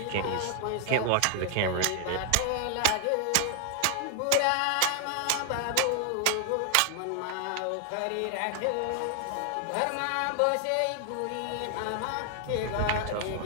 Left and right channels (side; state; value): both; different; correlation 0.00